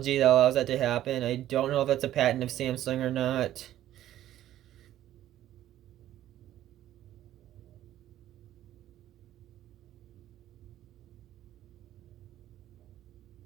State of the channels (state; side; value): quieter; left; 12.8 dB